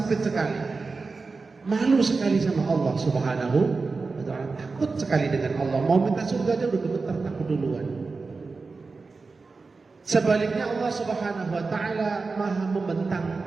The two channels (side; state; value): left; quieter; 4.2 dB